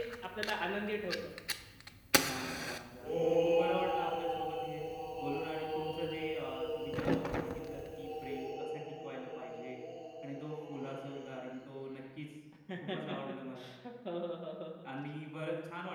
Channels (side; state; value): both; identical; correlation 1.00